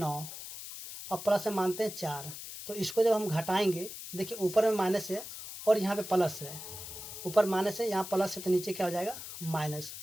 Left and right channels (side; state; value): left; noise; hiss, 10 dB below the sound